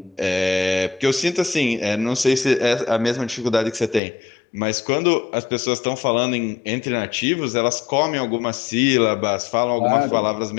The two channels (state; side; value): drops out; right; at 4.0 s